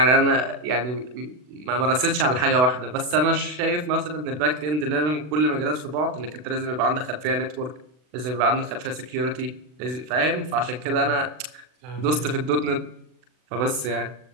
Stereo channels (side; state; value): left; late; 40 ms